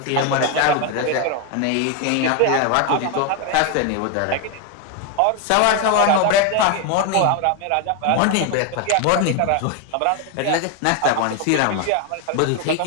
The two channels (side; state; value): both; different; correlation 0.01